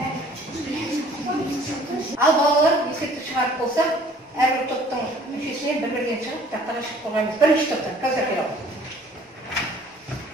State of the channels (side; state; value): both; normal; correlation 0.54